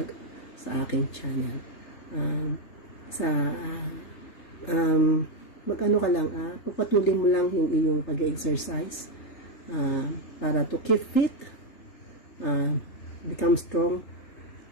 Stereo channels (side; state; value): right; late; 3.3 ms